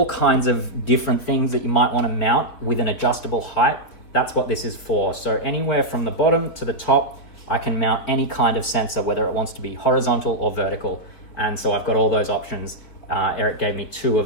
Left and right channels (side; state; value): right; late; 4.6 ms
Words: kinds of different things that you might want to mount with an adjustable height. That's what this is for. So anywhere from the bottom to the top, I can mount any kind of sensor, whether it wants to be horizontal or vertical. And so I've got all those options. Eric gave me 2